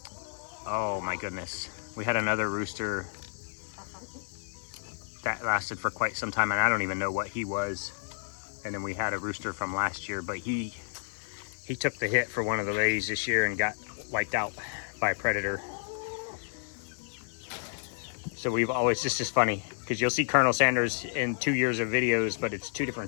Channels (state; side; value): silent; right; digital silence